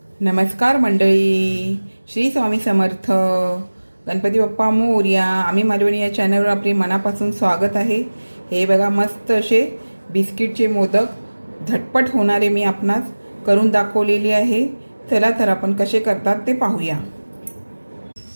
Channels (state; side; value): inverted; both; correlation -1.00